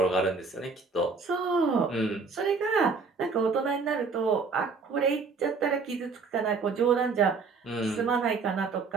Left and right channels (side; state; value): left; quieter; 4.6 dB